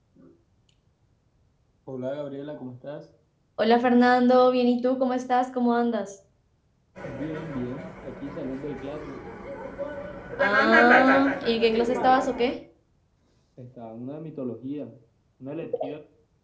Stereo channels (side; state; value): both; identical; correlation 1.00